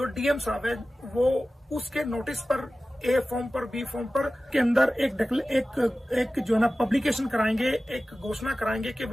डीएम साहब है वो उसके नोटिस पर ए फॉर्म पर बी फॉर्म पर के अंदर एक जो है ना पब्लिकेशन कराएंगे, एक घोषणा कराएंगे कि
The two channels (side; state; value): both; normal; correlation 0.96